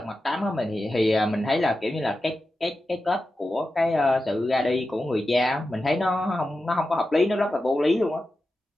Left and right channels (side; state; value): both; normal; correlation 0.92